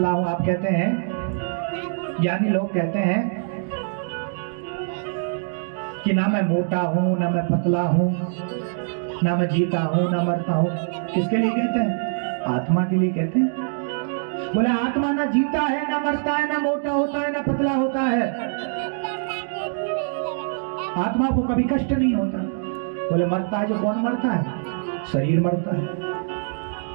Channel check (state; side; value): silent; left; digital silence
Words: हूं, आप कहते हैं, ज्ञानी लोग कहते हैं कि ना मैं मोटा हूं, ना मैं पतला हूं, ना मैं जीता हूं, ना मरता हूं। किसके लिए कहते हैं? आत्मा के लिए कहते हैं। बोले आत्मा ना जीता है, ना मरता है, ना मोटा होता है, ना पतला होता है। आत्मा को कभी कष्ट नहीं होता। बोले मरता है जो कौन मरता है? शरीर मरता है,